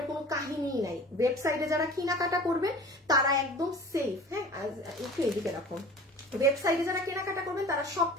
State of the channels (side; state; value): both; normal; correlation 0.42